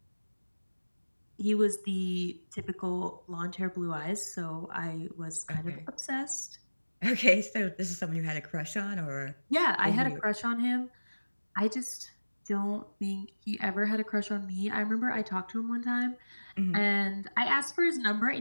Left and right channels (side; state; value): both; inverted; correlation -1.00